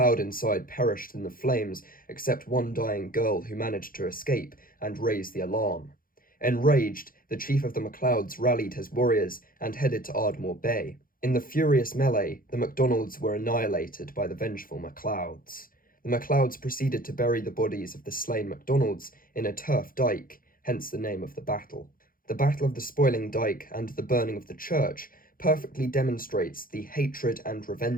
inside perished in the flames, except one dying girl who managed to escape and raise the alarm. Enraged, the chief of the MacLeods rallied his warriors and headed to Ardmore Bay. In the furious melee, the MacDonalds were annihilated by the vengeful MacLeods. The MacLeods proceeded to bury the bodies of the slain MacDonalds in a turf dyke, hence the name of the battle. The Battle of the Spoiling Dyke and the burning of the church perfectly demonstrates the hatred and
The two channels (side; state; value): right; late; 0.41 ms